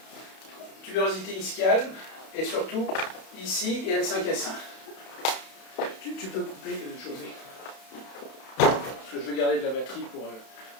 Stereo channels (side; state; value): right; late; 31 ms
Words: Tuberosité ischiale, et surtout, ici, et L5S1. Tu peux couper, José. Parce que je vais garder de la batterie pour